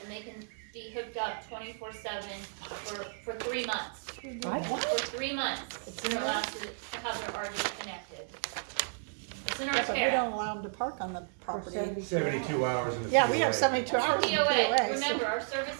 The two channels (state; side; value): silent; left; 56 dB below the other